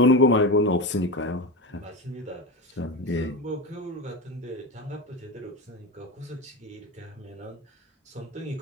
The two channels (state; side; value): normal; both; correlation 0.21